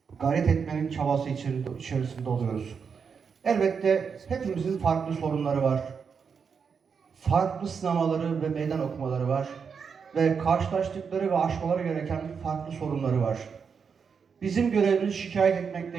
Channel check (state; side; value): quieter; left; 6.1 dB